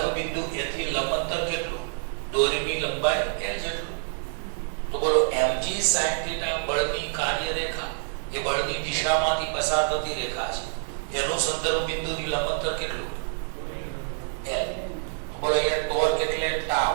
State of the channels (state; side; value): silent; left; 60 dB below the other